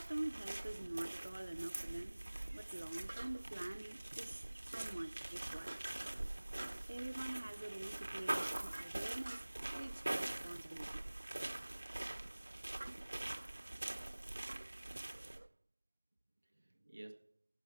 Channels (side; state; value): both; inverted; correlation -1.00